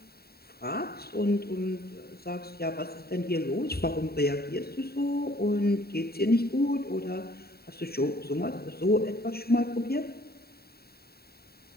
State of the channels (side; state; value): right; late; 0.45 ms